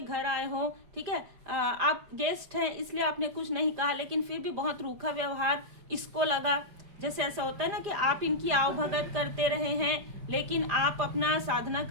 घर आए हो, ठीक है, आप गेस्ट हैं इसलिए आपने कुछ नहीं कहा, लेकिन फिर भी बहुत रूखा व्यवहार इसको लगा। जैसे ऐसा होता है ना कि आप इनकी आवभगत करते रहे हैं लेकिन आप अपना साधना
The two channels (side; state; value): left; late; 5.0 ms